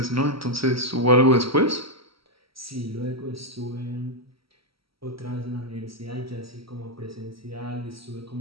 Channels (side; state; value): left; late; 0.75 ms